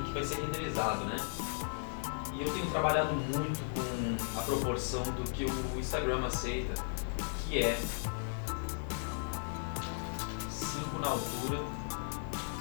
que vai ser renderizado, né? E eu tenho trabalhado muito com a proporção do que o Instagram aceita, que é 5 na altura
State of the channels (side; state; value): right; silent; digital silence